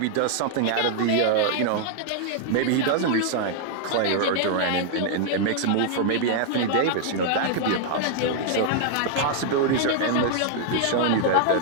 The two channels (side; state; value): both; different; correlation -0.01